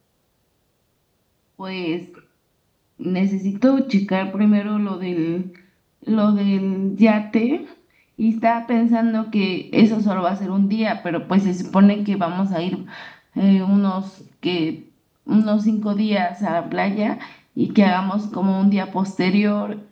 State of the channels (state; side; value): identical; both; correlation 1.00